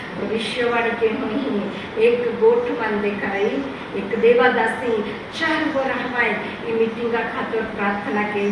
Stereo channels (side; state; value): both; identical; correlation 1.00